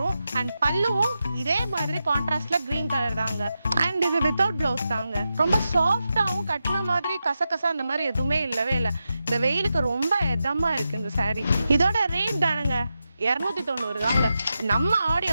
அண்ட் பல்லுவும் இதே மாதிரி கான்ட்ராஸ்ட்ல கிரீன் கலர் தாங்க. அண்ட் இது வித்தவுட் பிளவுஸ் தாங்க. ரொம்ப சாஃப்டாவும் கட்டின மாதிரி கசகசா அந்த மாதிரி எதுவுமே இல்லவே இல்லை. இந்த வெயிலுக்கு ரொம்ப இதமா இருக்கு இந்த சாரி. இதோட ரேட் தானுங்க 290 தாங்க. நம்ம ஆடி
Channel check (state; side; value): inverted; both; correlation -0.89